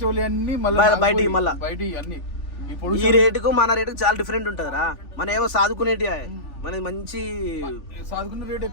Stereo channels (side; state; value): right; late; 3.4 ms